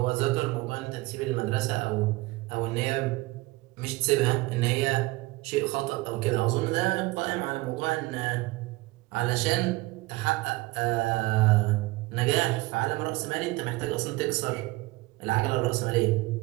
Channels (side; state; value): left; quieter; 21.2 dB